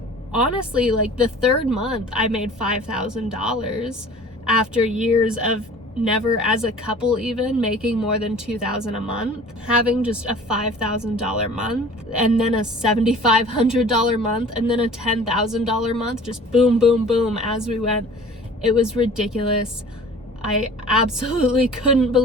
honestly, like the third month I made $5,000 after years of never as a couple even making more than $2,000 a month, having just a $5,000 month, and then a $7,500 month, and then a $10,000 month, just boom, boom, boom as we went. It was ridiculous. I absolutely couldn't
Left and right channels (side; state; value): both; normal; correlation 0.45